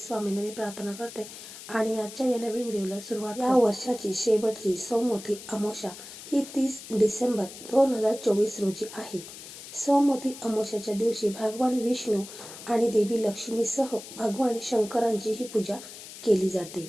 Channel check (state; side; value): noise; left; hiss, 14 dB below the sound